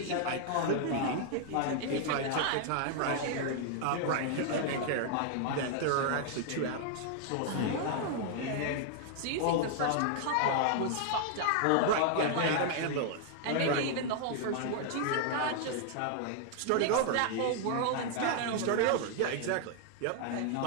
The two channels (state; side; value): different; both; correlation 0.00